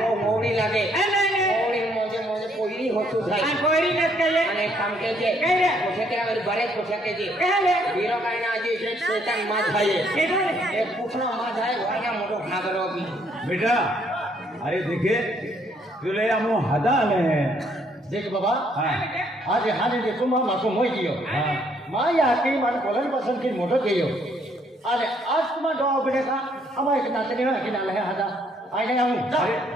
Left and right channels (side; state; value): both; normal; correlation 0.68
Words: वो मोड़ी लागे नहीं मोड़ी मोजे कोइरी होतु थाई आ कोई न कहे અને કામ કે છે કઈ પૂછે કે હવે બરે પૂછે કે છે कहले હીરો કાઈ ના જે છે શેતાન માં થાય केडो रे એક પૂછનો માં થાય વાયા મોટો ખાગરો બી बेटा अरे देखे तुले हम हदा आले हैं देख बाबा हाँ आज हाने दे तुम माको मोई दियो हाँ माया की मन कोलन पसंद की मोटो गयो अरे आज तुम दो बड़े का हम एक नातनी है कि नाल है हदा आने हम